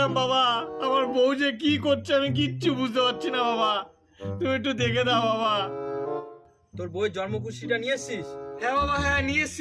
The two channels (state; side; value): identical; both; correlation 1.00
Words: বাবা। আমার বউ যে কি করছে আমি কিচ্ছু বুঝতে পারছি না বাবা, তুমি একটু দেখে দাও বাবা। তোর বইয়ের জন্মকুষ্ঠিটা নিয়ে এসছিস? হ্যাঁ বাবা, হ্যাঁ নিয়ে